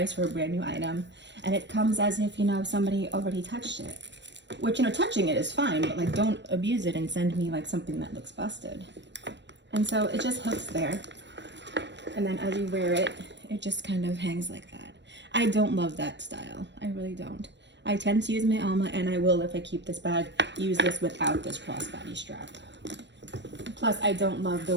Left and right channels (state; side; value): late; left; 0.52 ms